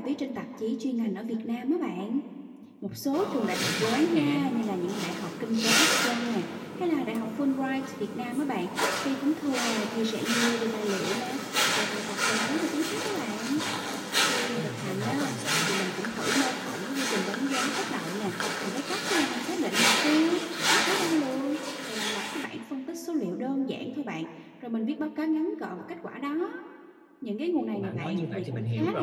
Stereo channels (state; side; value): identical; both; correlation 1.00